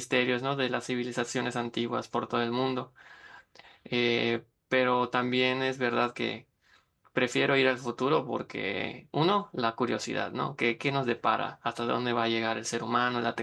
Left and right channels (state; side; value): identical; both; correlation 1.00